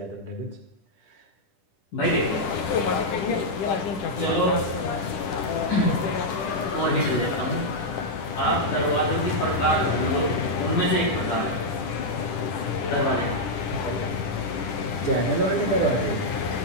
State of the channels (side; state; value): right; late; 10 ms